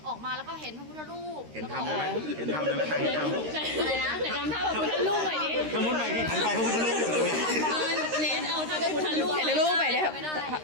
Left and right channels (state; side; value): late; left; 13 ms